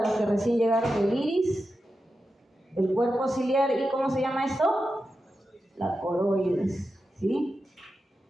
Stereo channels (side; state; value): both; normal; correlation 0.90